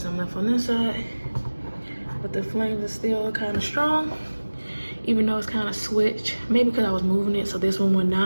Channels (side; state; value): both; inverted; correlation -1.00